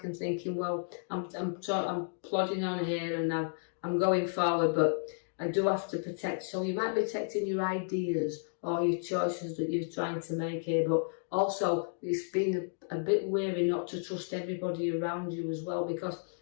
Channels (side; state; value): right; silent; digital silence